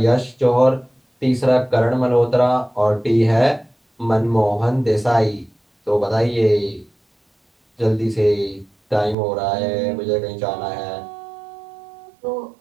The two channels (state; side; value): drops out; left; at 9.2 s